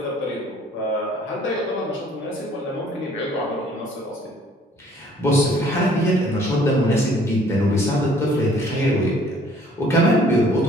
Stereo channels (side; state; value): both; normal; correlation 0.58